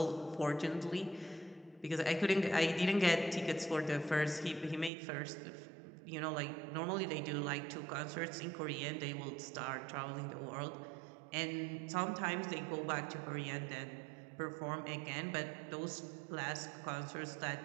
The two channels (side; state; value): left; drops out; at 4.9 s